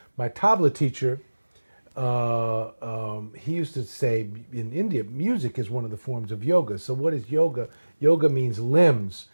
my tabla teacher, he used to say in India, music is one of the forms of yoga. So what is yoga? Yoga means limbs,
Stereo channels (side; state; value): both; inverted; correlation -1.00